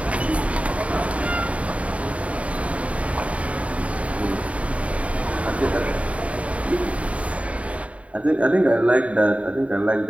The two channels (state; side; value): late; left; 0.065 ms